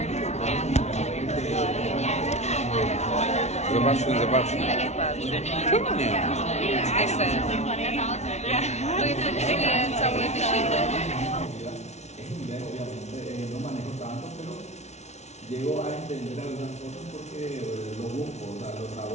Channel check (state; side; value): late; right; 0.32 ms